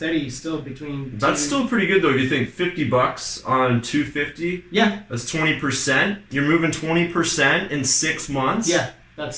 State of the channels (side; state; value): both; identical; correlation 1.00